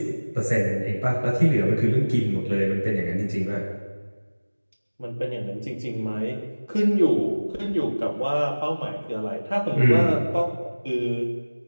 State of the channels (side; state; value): both; inverted; correlation -1.00